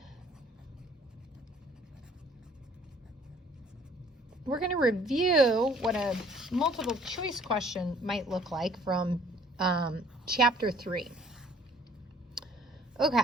We're going to review what a multiple choice question might look like from Chapter 3.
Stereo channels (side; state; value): both; normal; correlation 0.57